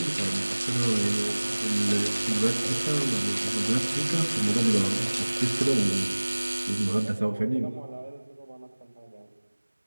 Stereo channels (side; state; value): both; inverted; correlation -1.00